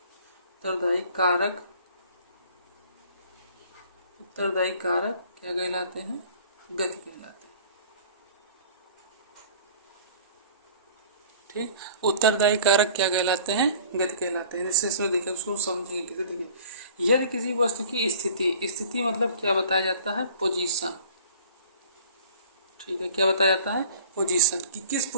कारक क्या कहलाते हैं, गति कहलाते हैं, ठीक। उत्तरदायी कारक क्या कहलाते हैं? गति कहलाते हैं। जैसे इसमें देखिए, उसको समझेंगे कैसे। देखिए, यदि किसी वस्तु की स्थिति मतलब क्या बताया जाता है? पोजीशन। ठीक है, क्या बताया जाता है? पोजीशन, कि किस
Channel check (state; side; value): inverted; both; correlation -0.48